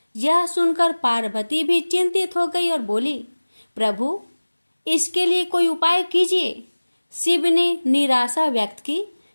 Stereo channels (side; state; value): both; inverted; correlation -1.00